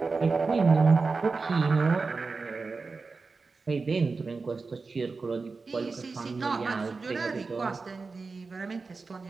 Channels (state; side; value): quieter; left; 4.2 dB